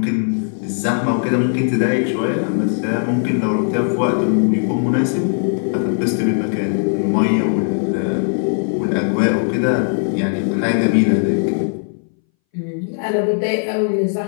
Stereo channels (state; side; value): silent; right; 63 dB below the other